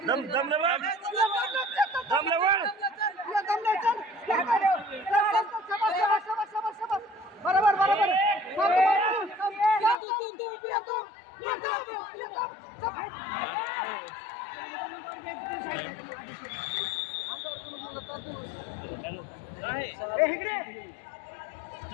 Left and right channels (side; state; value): right; drops out; at 10.0 s